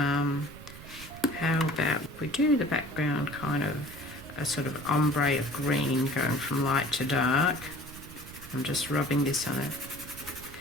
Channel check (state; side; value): noise; right; rumble, 16 dB below the sound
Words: about if we do the background kind of a sort of ombre of green going from light to dark. I'm just rubbing this on it.